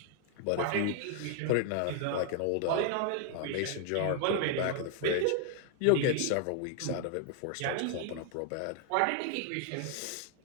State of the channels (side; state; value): both; different; correlation 0.00